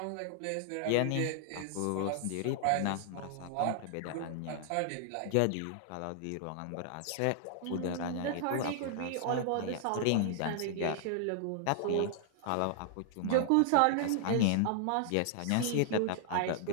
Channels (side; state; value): both; different; correlation -0.01